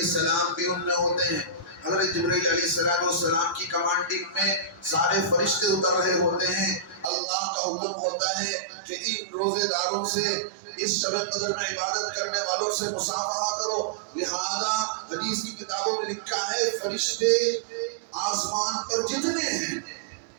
بھی ان میں ہوتے ہیں. حضرت جبرائیل علیہ السلام کی کمانڈنگ میں سارے فرشتے اتر رہے ہوتے ہیں. اللہ کا حکم ہوتا ہے کہ ان روزے داروں سے، اس شب قدر میں عبادت کرنے والوں سے مصافحہ کرو. لہذا حدیث کی کتابوں میں لکھا ہے فرشتے آسمان پر جتنے ہیں،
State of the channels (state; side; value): drops out; left; at 7.1 s